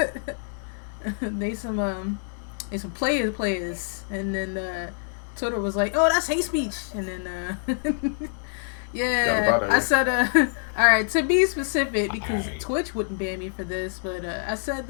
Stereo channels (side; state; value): right; silent; 61 dB below the other